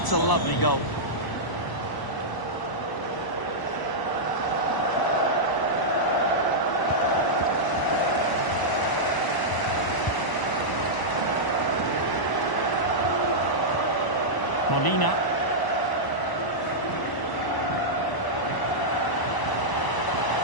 a lovely goal. Molina.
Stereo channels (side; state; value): right; late; 1.0 ms